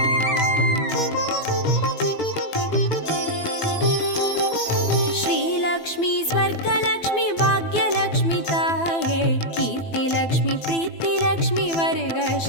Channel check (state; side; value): late; right; 12 ms